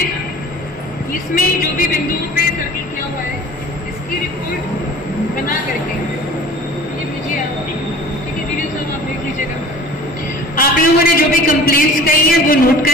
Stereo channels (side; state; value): both; normal; correlation 0.44